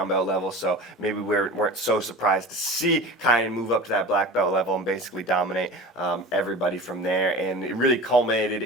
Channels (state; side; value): normal; both; correlation 0.35